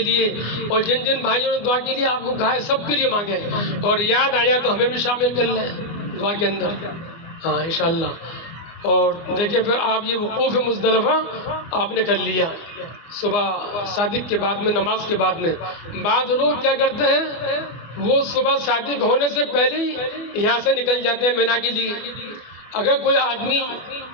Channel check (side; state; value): right; late; 24 ms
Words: لیے، اور جن جن بھائیوں نے دعا کے لیے آپ کو کہا ہے سب کے لیے مانگیں، اور یاد آیا تو ہمیں بھی شامل کر لیں دعا کے اندر، ہاں انشاءاللہ۔ اور دیکھیں پھر آپ یہ وقوف مزدلفہ آپ نے کر لیا صبح صادق کے بعد میں، نماز کے بعد میں۔ بعض لوگ کیا کرتے ہیں وہ صبح صادق ہونے سے پہلے ہی یہاں سے نکل جاتے ہیں مینا کے لیے۔ اگر کوئی آدمی